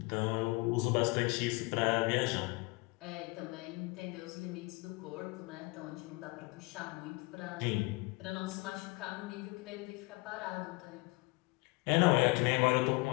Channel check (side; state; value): right; quieter; 26.0 dB